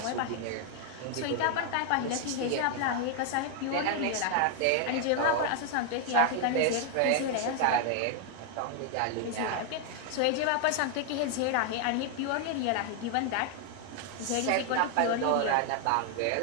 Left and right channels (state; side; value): different; both; correlation 0.00